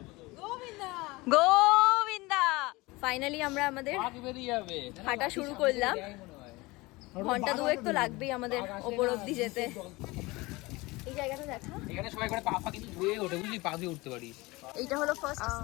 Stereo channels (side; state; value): right; quieter; 22.3 dB